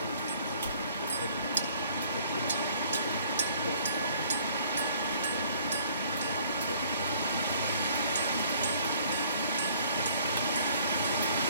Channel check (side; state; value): both; inverted; correlation -0.58